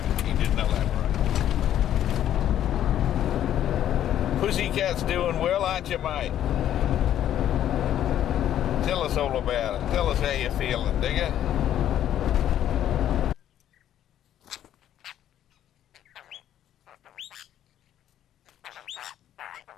Pussycat's doing well, aren't you, mate? Tell us all about it. Tell us how you're feeling, digger.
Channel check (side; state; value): right; quieter; 11.1 dB